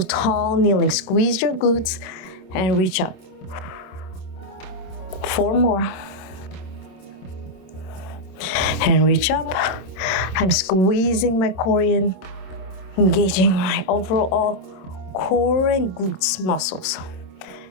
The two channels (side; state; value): right; late; 26 ms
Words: tall kneeling. Squeeze your glutes and reach up. 4 more. And reach up. I'm squeezing my core in, engaging my overall core and glutes muscles